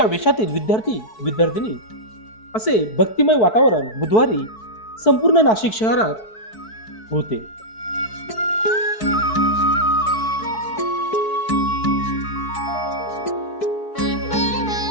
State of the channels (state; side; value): late; right; 4.6 ms